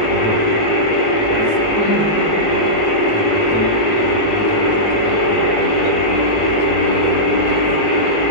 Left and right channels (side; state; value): right; late; 19 ms